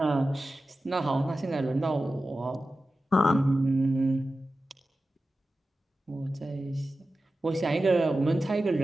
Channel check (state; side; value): normal; both; correlation 0.94